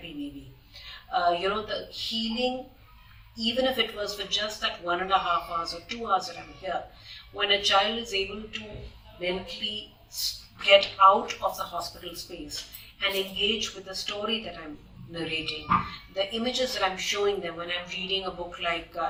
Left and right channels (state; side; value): identical; both; correlation 1.00